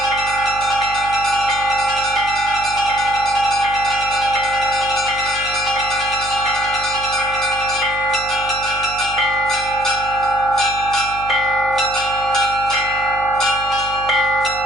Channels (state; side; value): noise; right; hum, 16 dB below the sound